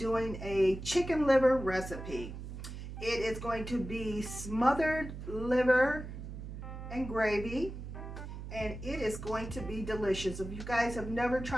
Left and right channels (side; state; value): right; noise; hum, 9 dB below the sound